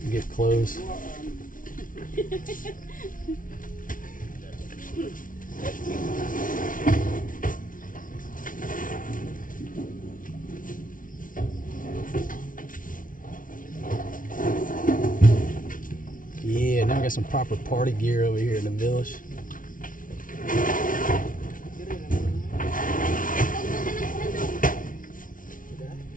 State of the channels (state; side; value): late; right; 0.39 ms